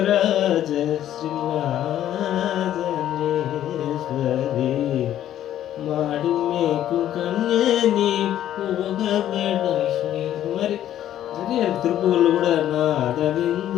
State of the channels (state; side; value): quieter; right; 11.7 dB